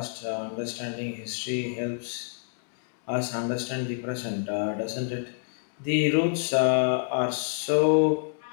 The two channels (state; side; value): silent; right; digital silence